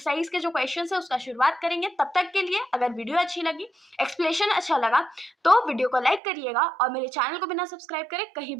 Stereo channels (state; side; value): drops out; left; at 6.2 s